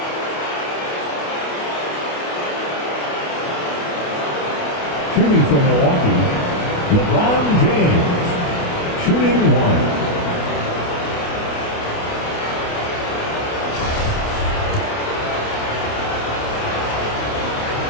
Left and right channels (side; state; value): right; late; 28 ms